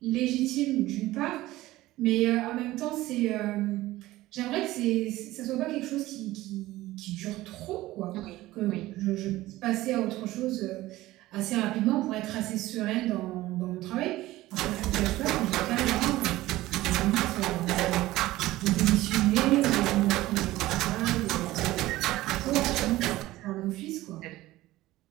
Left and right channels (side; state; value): left; quieter; 17.0 dB